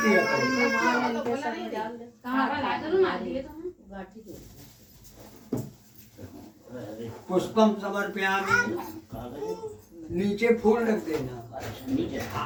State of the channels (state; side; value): identical; both; correlation 1.00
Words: है। मार दिए तो हम। गाठी दो पुष्पम समर्पयामि। नीचे फूल रख देना। नीचे